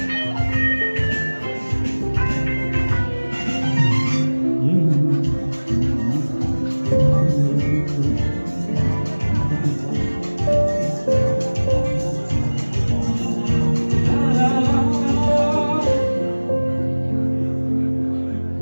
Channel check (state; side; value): inverted; both; correlation -1.00